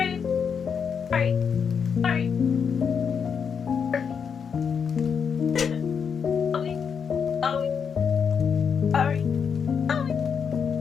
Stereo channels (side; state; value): right; quieter; 6.7 dB